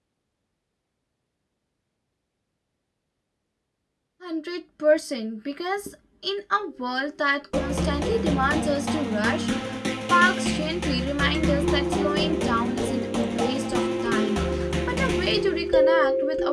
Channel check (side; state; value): both; identical; correlation 1.00